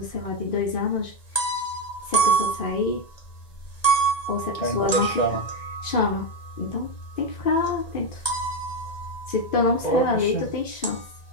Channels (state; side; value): late; right; 1.9 ms